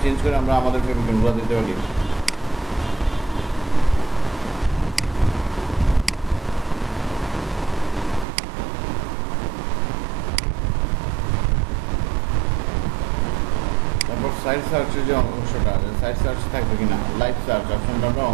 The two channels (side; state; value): left; drops out; at 8.2 s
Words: চেঞ্জ করে আমরা আমাদের ফেভিকনগুলো দিতে পারি। তারপর সাইড সার্চের যে অংশটা আছে, সাইড সার্চ থাকবে কিনা, লাইভ সার্চ অপশনটা আমরা